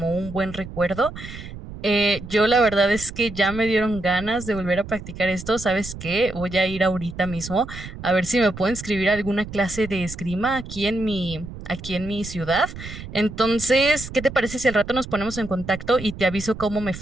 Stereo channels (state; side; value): noise; right; rumble, 12 dB below the sound